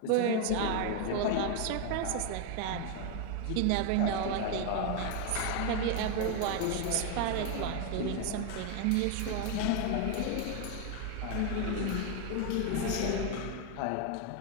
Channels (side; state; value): both; different; correlation 0.01